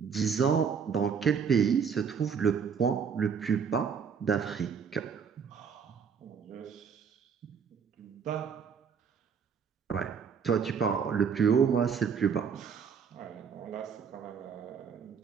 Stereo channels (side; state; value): left; quieter; 6.7 dB